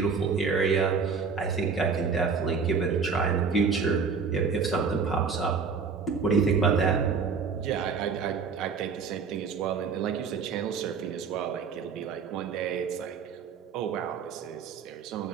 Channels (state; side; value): quieter; left; 5.5 dB